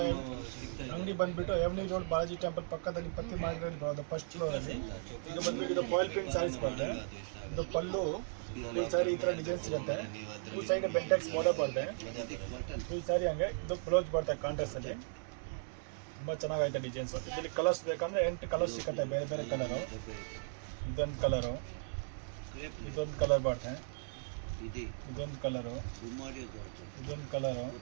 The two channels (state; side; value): silent; left; digital silence